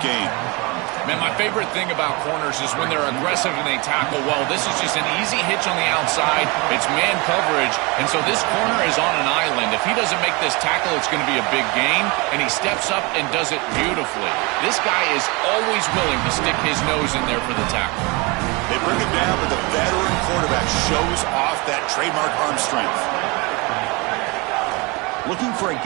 gain. Man, my favorite thing about corners is when they're aggressive and they tackle well. This is just an easy hitch on the outside. It's man coverage, and so this corner is on an island. If he doesn't make this tackle, it's going to be a big gain, and he steps up and does it beautifully. This guy is always willing to stick his nose in there for the tackle. They bring him down, but the veteran quarterback shows off that trademark arm strength. Looking for a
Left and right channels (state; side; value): quieter; left; 27.0 dB